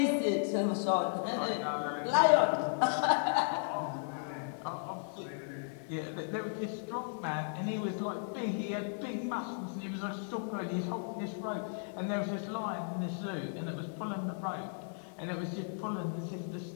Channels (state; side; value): silent; right; digital silence